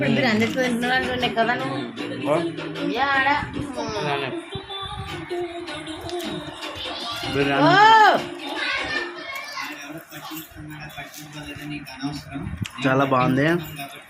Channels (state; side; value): identical; both; correlation 1.00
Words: బిర్యానీ చాలా బాగుంది.